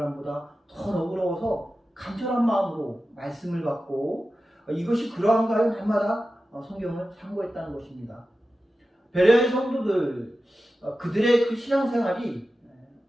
더 너그러워서 간절한 마음으로 말씀을 받고 이것이 그러한가요? 날마다 성경을 참고했다는 것입니다. 베레아의 성도들 그들의 그 신앙생활이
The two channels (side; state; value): both; normal; correlation 0.93